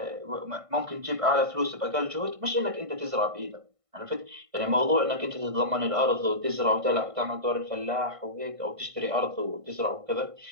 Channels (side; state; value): left; late; 1.5 ms